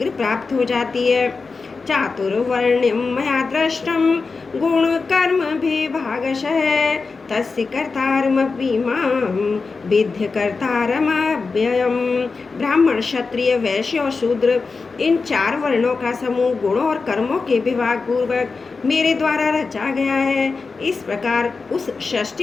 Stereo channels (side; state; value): right; quieter; 4.4 dB